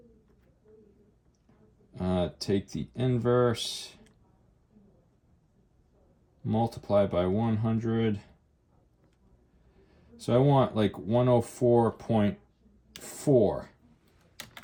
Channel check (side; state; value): both; identical; correlation 1.00